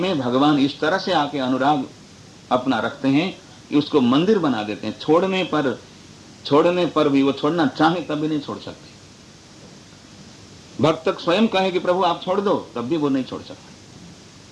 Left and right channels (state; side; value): identical; both; correlation 1.00